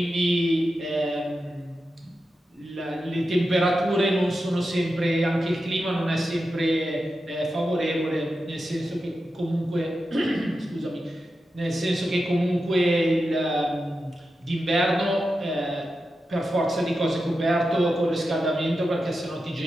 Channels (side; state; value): both; normal; correlation 0.90